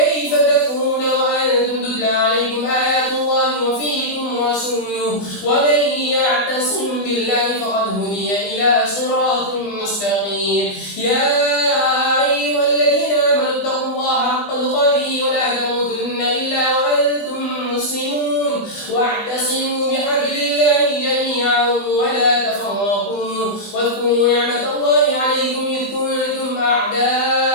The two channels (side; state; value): right; late; 20 ms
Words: تكفرون وأنتم تتلى عليكم آيات الله وفيكم رسوله ومن يعتصم بالله فقد هدي إلى صراط مستقيم يا أيها الذين آمنوا اتقوا الله حق تقاته ولا تموتن إلا وأنتم مسلمون واعتصموا بحبل الله جميعا ولا تفرقوا واذكروا نعمة الله عليكم إذ كنتم أعداء